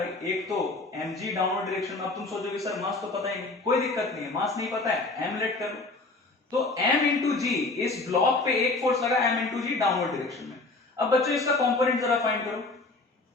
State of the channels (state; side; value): quieter; right; 3.4 dB